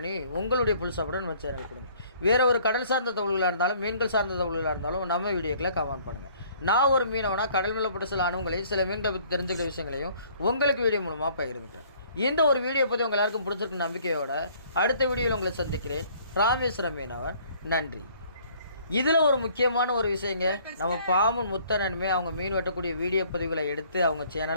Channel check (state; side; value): inverted; both; correlation -0.58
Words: உங்களுடைய ஃபுல் சப்போர்ட்டை நம்ம சேனலுக்கு கொடுங்க. வேறு ஒரு கடல் சார்ந்த தகவல்களாக இருந்தாலும் மீன்கள் சார்ந்த தகவல்களாக இருந்தாலும் நம்ம வீடியோக்கில் கமெண்ட் பண்ணுங்கள். நான் ஒரு மீனவனா கடல் மேலப்பட்ட சில அனுபவங்களையும் சில மீன்களை பற்றி தெரிஞ்சுக்கிற விஷயங்களையும் உங்களுக்கு வீடியோ மூலமாக பகிர்ந்துட்டேன். இந்த ஒரு வீடியோ பற்றி உங்கள் எல்லாருக்கும் பிடிச்சிருக்கு நம்பிக்கையோட அடுத்த வீடியோவில் உங்களை சந்திக்கிறேன். ராமேஸ்வரம் மீனவர், நன்றி. இதில் ஒரு முக்கியமான ஒரு விஷயங்க, நம்ம பாமன் முத்தண்ணனுமே அவங்க மீன் வெட்டக்கூடிய வீடியோ பதிவுகளை எடுத்து அவங்க